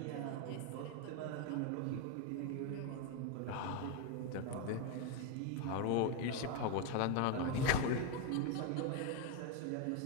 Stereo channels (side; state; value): both; different; correlation 0.01